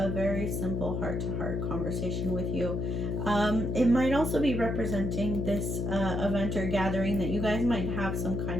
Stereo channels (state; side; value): noise; left; hum, 1 dB below the sound